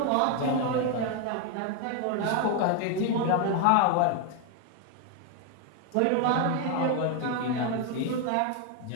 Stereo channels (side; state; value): both; different; correlation 0.01